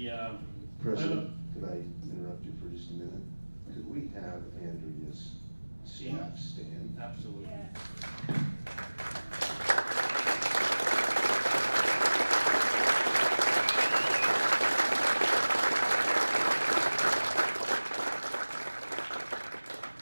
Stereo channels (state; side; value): inverted; both; correlation -1.00